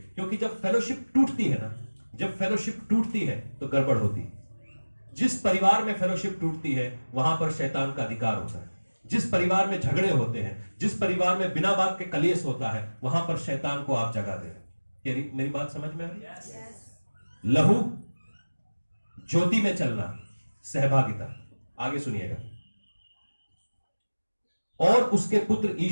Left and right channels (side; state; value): both; inverted; correlation -1.00